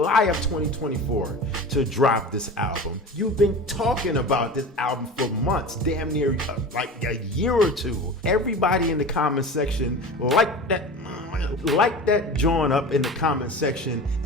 of 2024 to drop this album. You've been talking about this album for months, damn near like a year or two. Everybody in the comment section like that join up in the comment section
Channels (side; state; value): both; normal; correlation 0.33